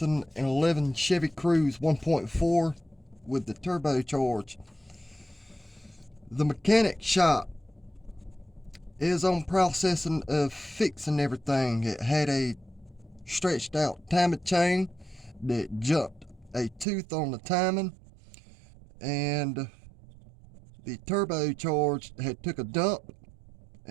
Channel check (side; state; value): left; drops out; at 16.9 s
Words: Chevy Cruze 1.4 with the turbocharged. The mechanic shop is on processing of fixing everything. It had a stretched out timing chain that jumped a tooth on the timing, and the turbocharged had took a dump,